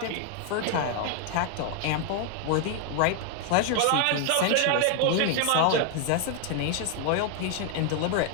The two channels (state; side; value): different; both; correlation 0.00